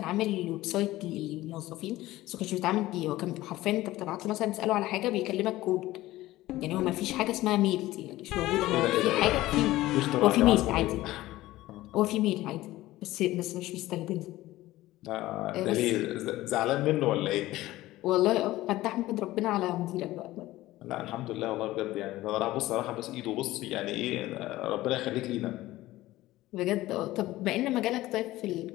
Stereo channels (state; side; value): quieter; right; 16.7 dB